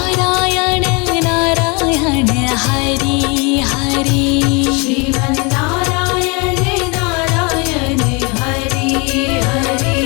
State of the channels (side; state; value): right; quieter; 30.4 dB